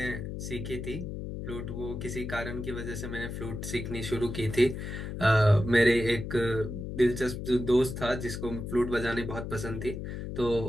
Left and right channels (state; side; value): noise; left; hum, 6 dB below the sound